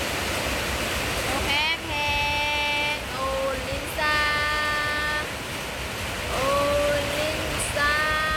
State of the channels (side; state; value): both; identical; correlation 1.00